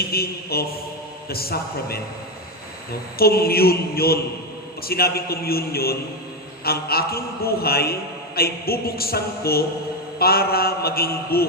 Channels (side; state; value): both; normal; correlation 0.10